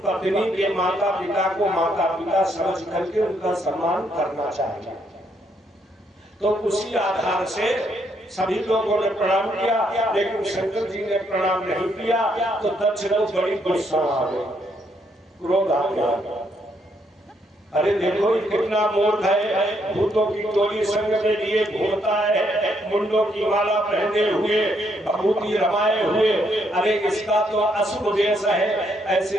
पत्नी के माता पिता को माता पिता समझ करके उनका सम्मान करना चाहिए। तो उसी आधार से सभी लोगों ने प्रणाम किया, लेकिन शंकर जी ने प्रणाम नहीं किया तो दक्ष को बड़ी गुस्सा आ गई, क्रोध आ गया। अरे देखो ये कितना मूर्ख है, भूतों की टोली संग में लिए घूमता है, मुंडों की माला पहने हुए, भभूति रमाए हुए, अरे इसका तो अशुभ देश है, ऐसे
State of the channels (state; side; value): normal; both; correlation 0.73